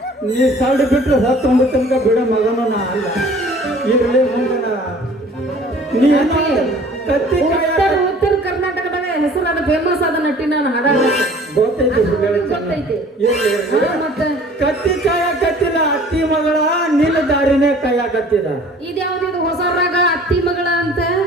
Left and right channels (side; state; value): both; normal; correlation 0.50